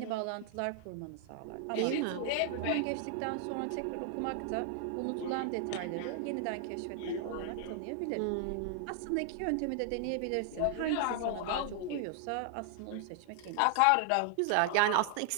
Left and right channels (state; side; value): different; both; correlation 0.00